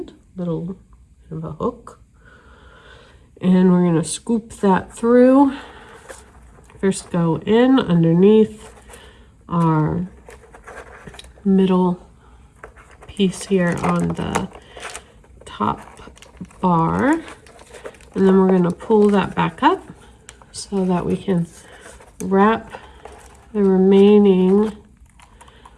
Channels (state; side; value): identical; both; correlation 1.00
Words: little bit of a hook. And we're going to scoop that through. First go in underneath our middle piece here on the top bar. And then we're going to pull that back up so that we can wrap the remaining